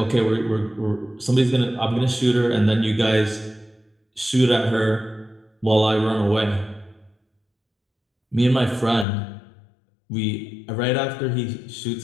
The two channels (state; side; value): drops out; right; at 9.1 s